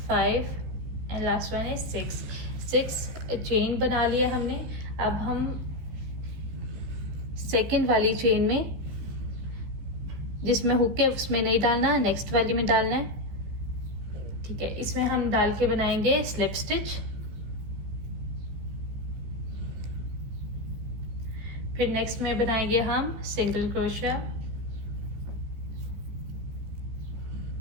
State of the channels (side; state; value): left; late; 15 ms